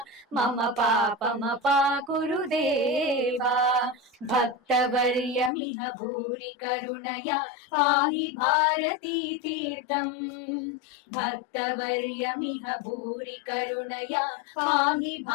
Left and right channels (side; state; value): right; drops out; at 5.5 s